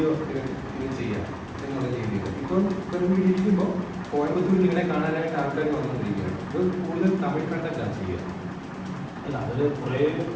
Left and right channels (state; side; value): identical; both; correlation 1.00